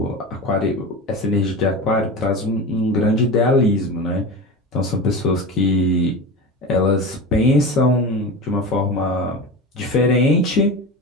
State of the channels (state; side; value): normal; both; correlation 0.27